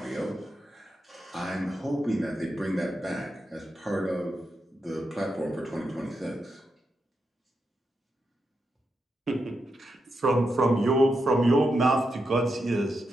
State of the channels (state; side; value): normal; both; correlation 0.85